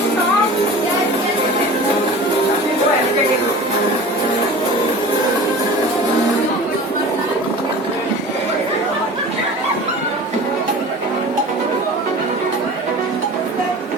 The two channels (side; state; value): both; normal; correlation 0.38